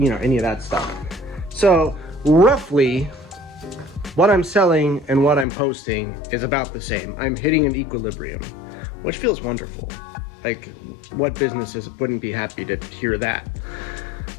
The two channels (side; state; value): right; drops out; at 5.5 s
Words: of that stuff. So roughly what I'm selling and what I'm posting is about the same. I'm hitting an equilibrium, which feels wonderful. Like, what businesses wouldn't be happy to hear that?